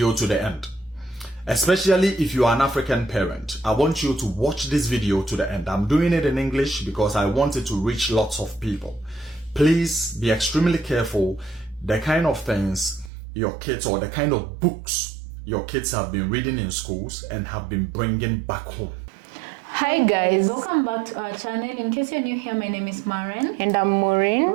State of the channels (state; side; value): drops out; left; at 13.1 s